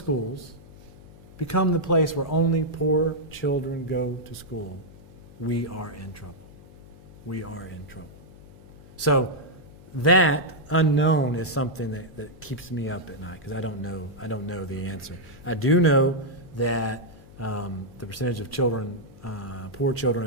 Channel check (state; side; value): noise; left; hum, 21 dB below the sound